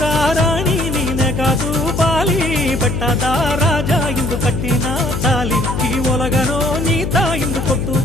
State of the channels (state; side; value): noise; left; hum, 3 dB below the sound